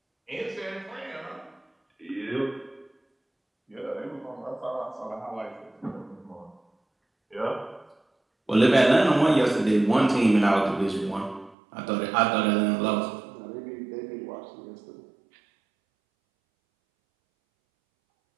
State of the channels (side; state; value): left; drops out; at 11.6 s